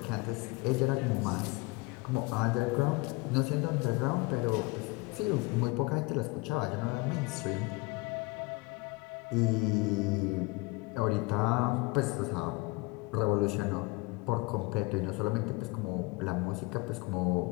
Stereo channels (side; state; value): right; quieter; 25.0 dB